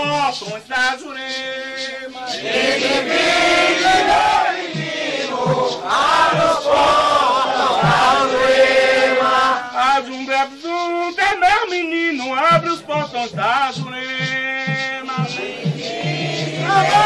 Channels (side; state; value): both; identical; correlation 1.00